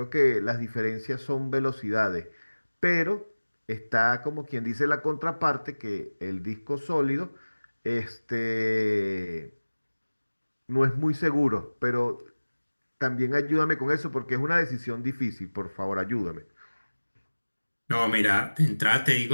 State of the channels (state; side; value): inverted; both; correlation -1.00